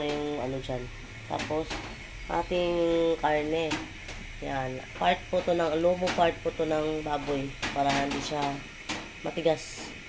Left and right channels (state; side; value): identical; both; correlation 1.00